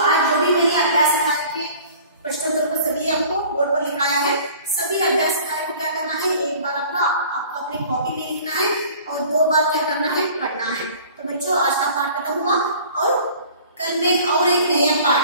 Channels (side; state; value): both; inverted; correlation -0.48